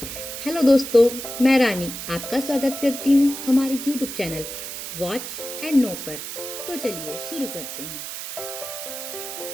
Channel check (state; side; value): noise; right; hiss, 8 dB below the sound